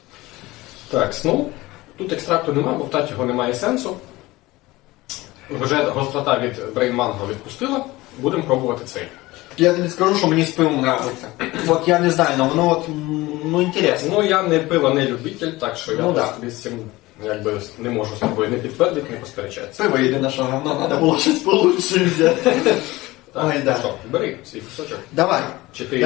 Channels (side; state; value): right; quieter; 19.7 dB